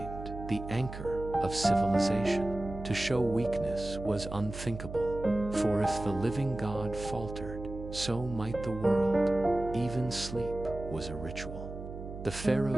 the anchor of civilization. To show weakness was unthinkable, for if the living God faltered, so might the world. Even sleep was a ritual. The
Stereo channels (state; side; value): noise; right; hum, 10 dB below the sound